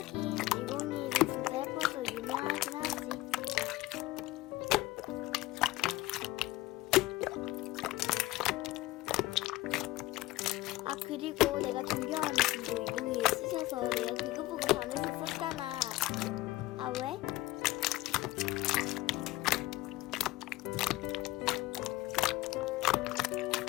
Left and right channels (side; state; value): right; quieter; 18.5 dB